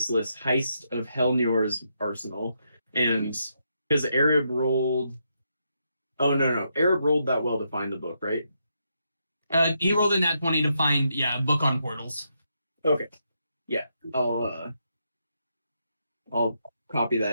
of Helnior's Arsenal. And because Arab rolled Arab rolled that well to find the book, right? He rolled in that 20 to find a book on portals. Okay. Yeah. I'll copy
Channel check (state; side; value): inverted; both; correlation -0.80